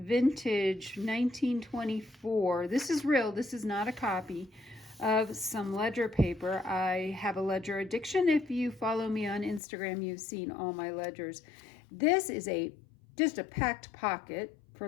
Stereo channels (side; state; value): right; drops out; at 9.6 s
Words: 1924, this is real, this is not a copy, of some ledger paper. I have a ledger addiction. If you follow me on Instagram, you've seen all my ledgers. This is just a packed pocket, for